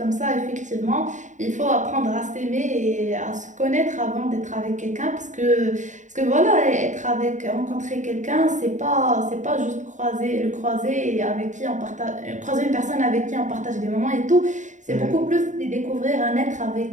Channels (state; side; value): late; left; 0.36 ms